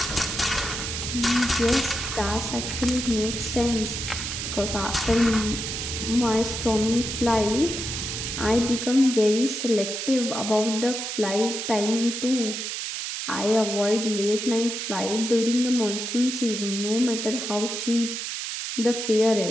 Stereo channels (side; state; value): right; noise; hiss, 4 dB below the sound